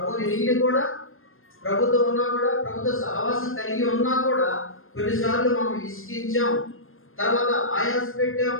నీళ్ళు కూడా ప్రభుతో ఉన్నా కూడా, ప్రభుత్వ సహవాసం కలిగి ఉన్నా కూడా కొన్నిసార్లు మనం విసిగించాం, తర్వాత ఆయాస పెట్టాం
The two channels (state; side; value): late; right; 0.60 ms